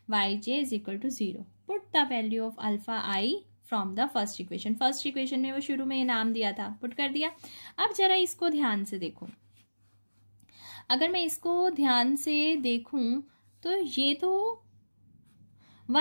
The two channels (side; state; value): both; inverted; correlation -1.00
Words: y j is equal to 0। Put the value of alpha i from the first equation. First equation में वो शुरू में नाम दिया था, पुट कर दिया। अब जरा इसको ध्यान से देखो। अगर मैं इसको ध्यान से देखूं तो ये तो